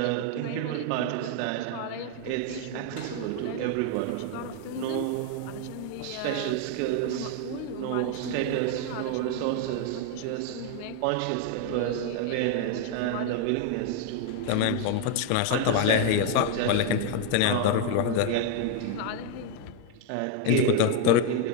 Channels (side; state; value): both; different; correlation 0.01